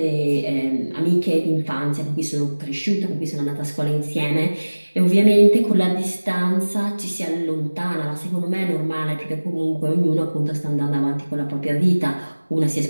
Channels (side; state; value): both; inverted; correlation -1.00